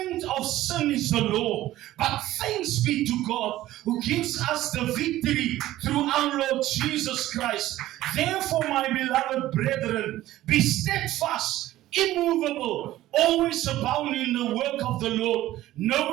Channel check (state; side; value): quieter; left; 15.1 dB